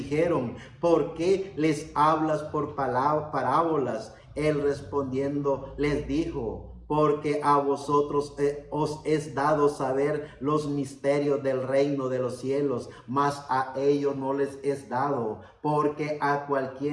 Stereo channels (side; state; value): both; identical; correlation 1.00